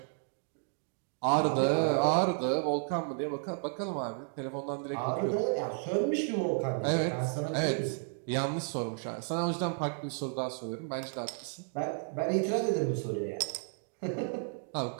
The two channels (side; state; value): left; silent; 56 dB below the other